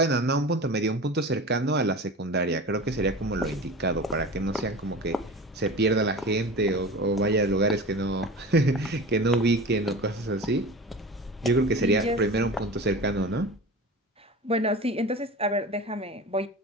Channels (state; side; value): normal; both; correlation 0.33